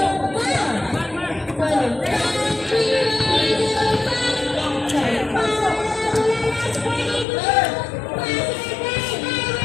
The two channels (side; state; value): right; drops out; at 7.2 s